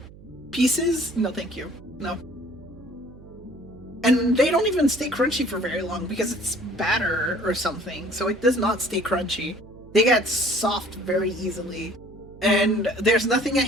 pieces. No, thank you. No. And they don't even stay crunchy for very long because it's batter or something. So it does not stay crunchy. They get soft very easily. And there's nothing I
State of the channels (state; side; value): noise; right; hum, 20 dB below the sound